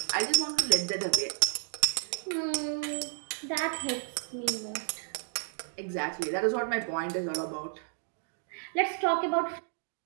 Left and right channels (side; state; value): left; silent; digital silence